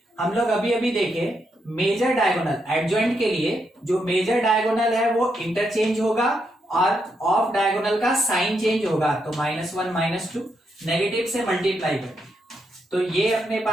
हम लोग अभी अभी देखे मेजर डायगोनल एडजॉइंट के लिए जो मेजर डायगोनल है वो इंटरचेंज होगा और ऑफ डायगोनल का साइन चेंज होगा। तो -1 -2 नेगेटिव से मल्टीप्लाई करेंगे, तो ये अपने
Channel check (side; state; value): both; normal; correlation 0.80